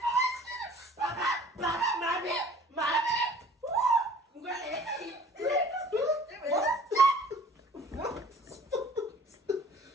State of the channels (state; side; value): normal; both; correlation 0.50